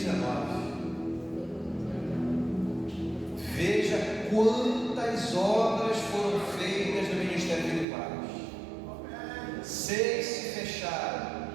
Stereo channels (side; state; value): left; drops out; at 7.9 s